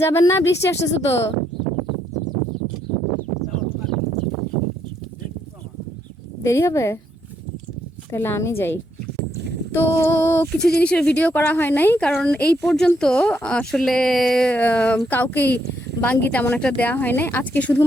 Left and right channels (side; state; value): both; normal; correlation 0.75